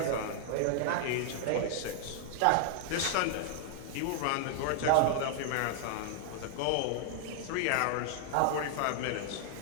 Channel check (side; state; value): both; different; correlation -0.01